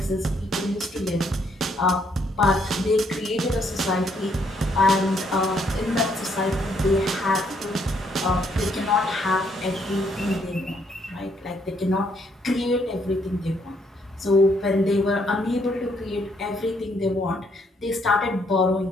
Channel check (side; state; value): both; normal; correlation 0.70